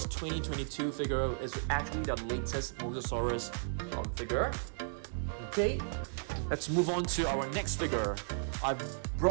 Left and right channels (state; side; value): silent; left; digital silence